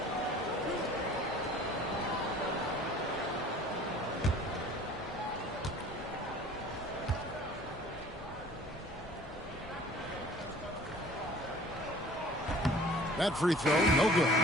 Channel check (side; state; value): both; normal; correlation 0.49